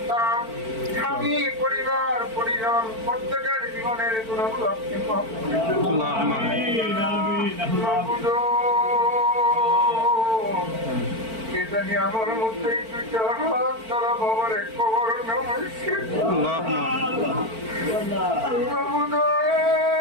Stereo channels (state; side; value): late; left; 4.5 ms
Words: স্বামী পরিবার পরিজন প্রত্যেকের জীবনের গুণগুলো আপনি মাফ করে দিন। اللهم آمين মাবুদো, কে জানি আমার মধ্যে দুইটা হাত দ্বারা বাবার এক কবর নামাইছে اللهم آمين মাবুদো,